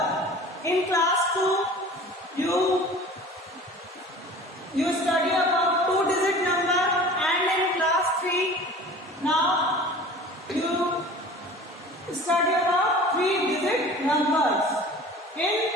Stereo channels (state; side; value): normal; both; correlation 0.42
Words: In class 2, you study about two-digit number, and in class 3, now you study about three-digit numbers. In